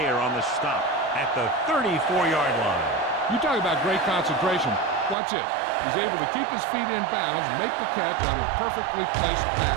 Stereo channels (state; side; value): drops out; left; at 5.2 s